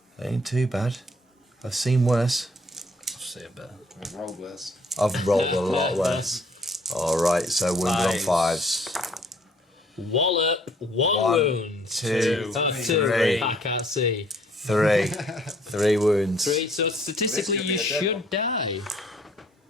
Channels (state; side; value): normal; both; correlation 0.61